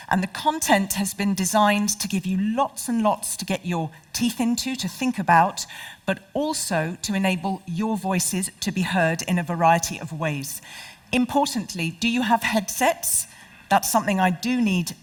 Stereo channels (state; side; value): identical; both; correlation 1.00